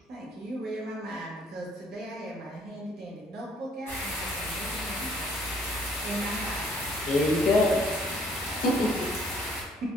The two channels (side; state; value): both; normal; correlation 0.62